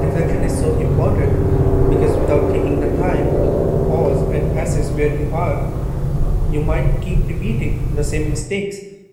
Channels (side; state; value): both; identical; correlation 1.00